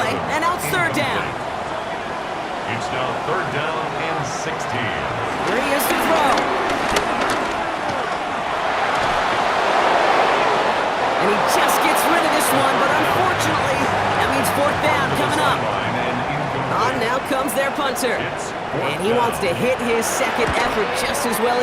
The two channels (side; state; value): both; identical; correlation 1.00